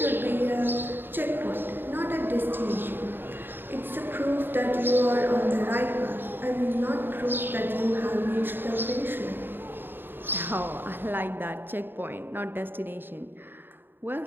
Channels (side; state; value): left; late; 0.097 ms